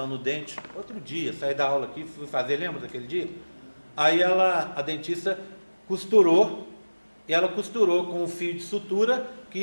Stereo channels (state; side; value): inverted; both; correlation -1.00